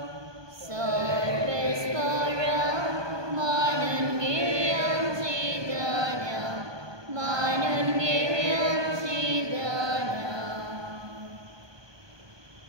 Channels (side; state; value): left; late; 1.2 ms